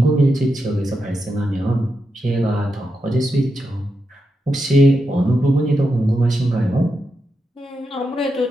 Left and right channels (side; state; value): both; normal; correlation 0.86